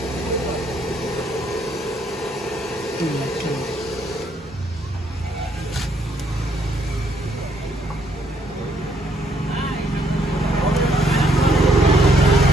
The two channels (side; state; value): both; normal; correlation 0.70